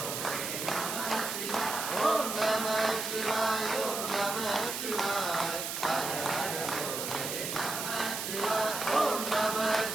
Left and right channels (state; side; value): noise; right; hiss, 4 dB below the sound